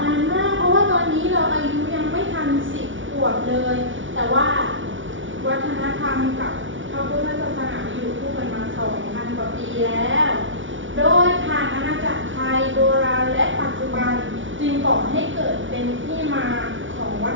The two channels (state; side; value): late; left; 0.56 ms